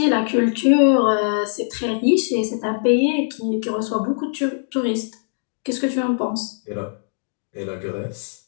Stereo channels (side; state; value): right; silent; digital silence